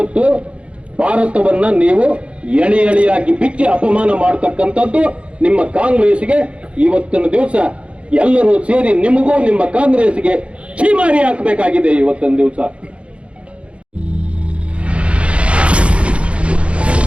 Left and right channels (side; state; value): left; late; 0.060 ms